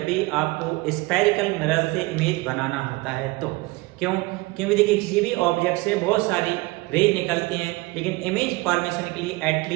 भी आपको स्फेरिकल मिरर से इमेज बनाना होता है। तो क्योंकि देखिए किसी भी ऑब्जेक्ट से बहुत सारी रेज निकलती हैं, लेकिन इमेज फॉर्मेशन के लिए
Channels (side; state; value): left; quieter; 22.8 dB